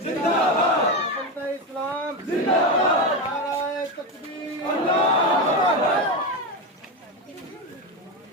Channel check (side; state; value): both; normal; correlation 0.14